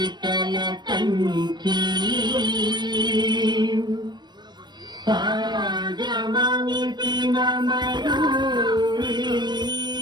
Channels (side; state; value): left; late; 0.21 ms